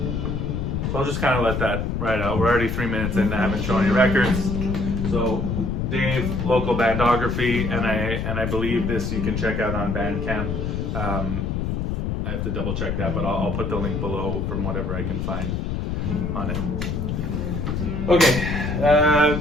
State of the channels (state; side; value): noise; left; rumble, 1 dB below the sound